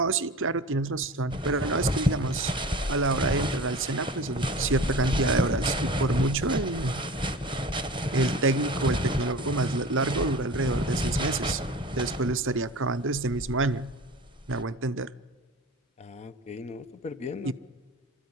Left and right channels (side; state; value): both; normal; correlation 0.36